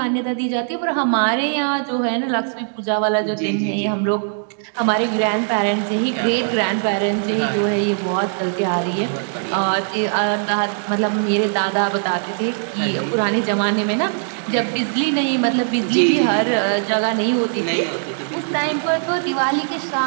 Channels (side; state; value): left; silent; digital silence